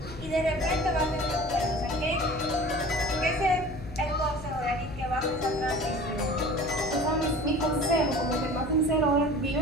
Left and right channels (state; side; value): noise; left; hum, 13 dB below the sound